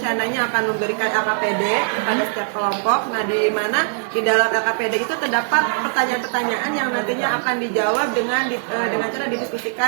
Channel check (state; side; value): silent; left; digital silence